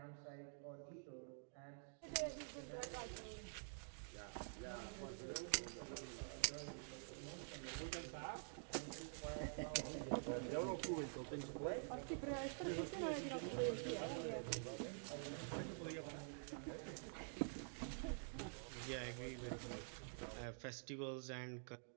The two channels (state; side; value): silent; left; digital silence